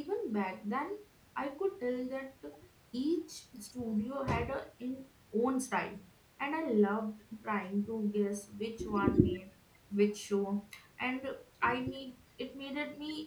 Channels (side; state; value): both; identical; correlation 1.00